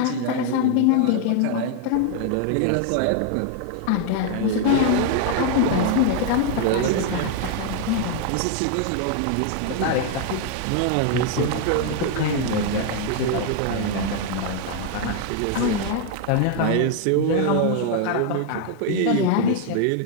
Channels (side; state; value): both; different; correlation 0.00